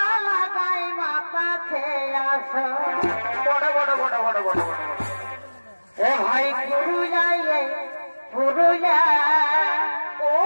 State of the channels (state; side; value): inverted; both; correlation -1.00